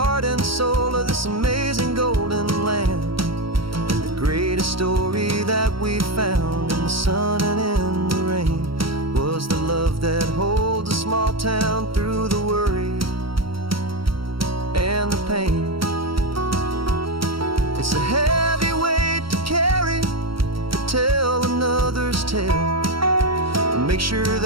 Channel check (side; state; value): left; late; 0.75 ms